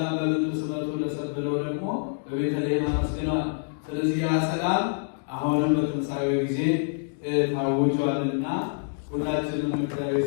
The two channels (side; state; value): right; silent; digital silence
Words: በምድር ስምረቱ ለሰብእ ብለው ደግሞ በቤተልሔም አመስግነዋል። ስለዚህ ያ ሰላም አሁንም በትንሣኤው ጊዜ ታውጇልና ሁላችንም እግዚአብሔር